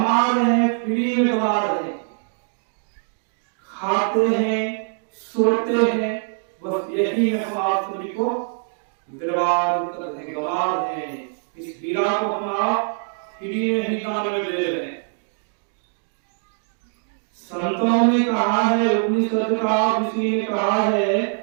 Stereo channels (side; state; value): left; silent; 63 dB below the other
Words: रहे हैं, फ्री में गवा रहे हैं, खाते हैं, सोते हैं, बस यही हम आप सभी को बर्बाद कर रहे हैं, गवा रहे हैं। इस हीरा को हम आप फ्री में ही दान में दे रहे हैं। संतों ने कहा है, उपनिषद का ऋषि ने कहा है